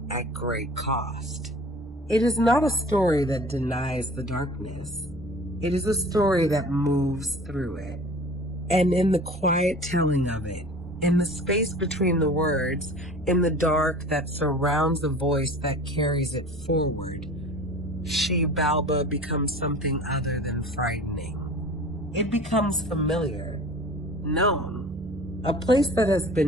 at great cost. It is not a story that denies the darkness. It is a story that moves through it. And in the quiet telling of it, in the space between the words, in the dark that surrounds the voice that carries it forward, Xilbalba becomes something other than frightening. It becomes familiar, known, a place that has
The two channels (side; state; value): both; normal; correlation 0.42